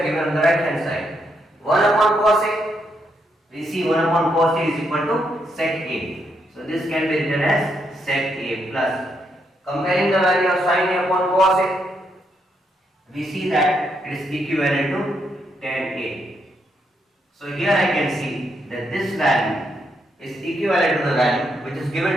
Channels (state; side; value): normal; both; correlation 0.78